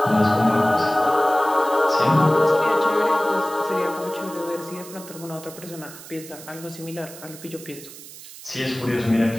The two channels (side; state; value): right; noise; hiss, 16 dB below the sound